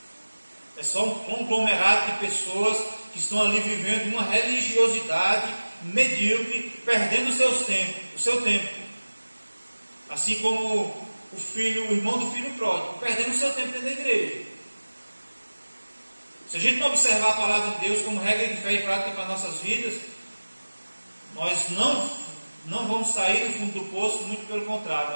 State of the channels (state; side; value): inverted; both; correlation -1.00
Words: É só um conglomerado de pessoas que estão ali vivendo uma religiosidade medíocre, perdendo o seu tempo. Assim como o irmão do filho pródigo, perdendo o seu tempo dentro da igreja. Se a gente não observar a palavra de Deus como regra de fé e prática para nossas vidas, nós não vamos sair do fundo do poço, muito pelo contrário,